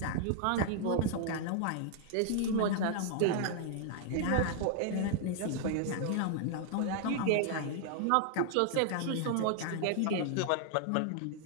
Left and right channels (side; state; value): both; different; correlation 0.00